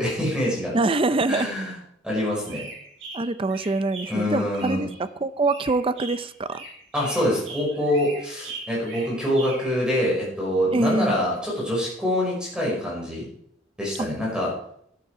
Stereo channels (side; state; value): both; normal; correlation 0.54